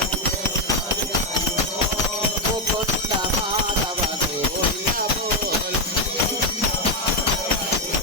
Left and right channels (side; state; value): both; normal; correlation 0.05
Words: मुकुंद माधव गोविंद बोल